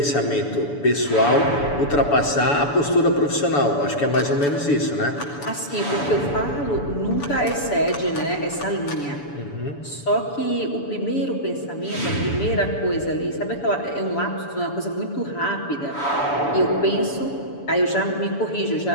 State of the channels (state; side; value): late; right; 7.0 ms